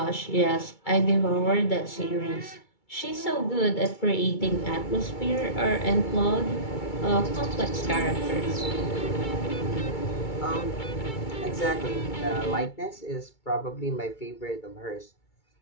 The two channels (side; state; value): right; late; 2.3 ms